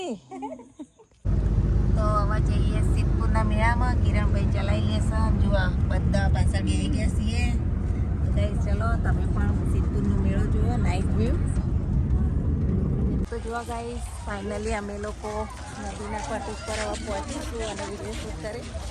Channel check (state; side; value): identical; both; correlation 1.00